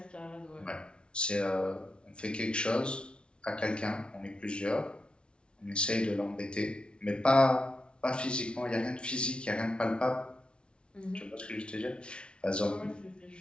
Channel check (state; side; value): late; right; 0.057 ms